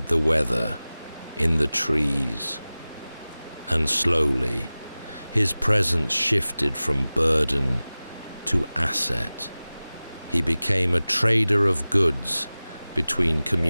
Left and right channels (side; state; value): both; inverted; correlation -0.98